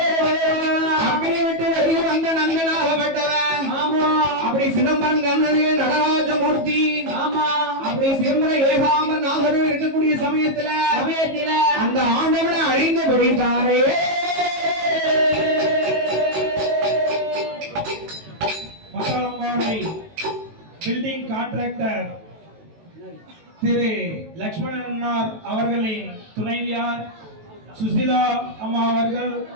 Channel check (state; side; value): late; left; 18 ms